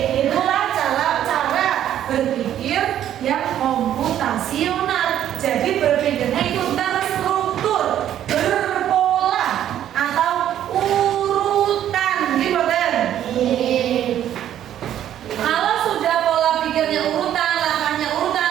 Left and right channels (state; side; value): quieter; left; 11.1 dB